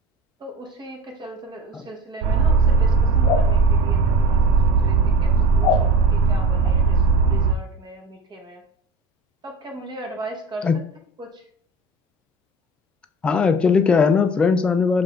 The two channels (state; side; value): normal; both; correlation 0.36